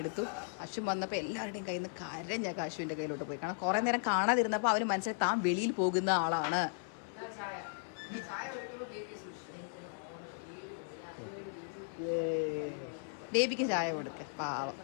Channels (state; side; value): silent; right; digital silence